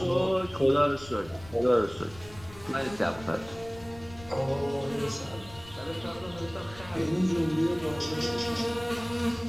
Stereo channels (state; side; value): noise; left; rumble, 19 dB below the sound